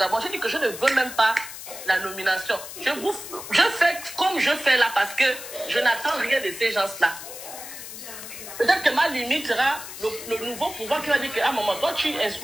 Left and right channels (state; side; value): noise; left; hiss, 11 dB below the sound